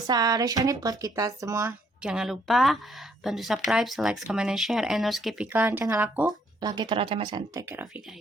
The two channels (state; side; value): normal; both; correlation 0.68